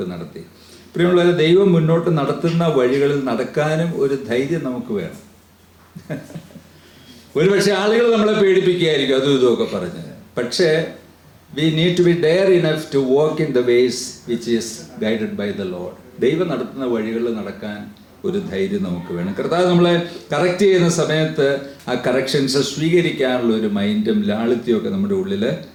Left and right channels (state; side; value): identical; both; correlation 1.00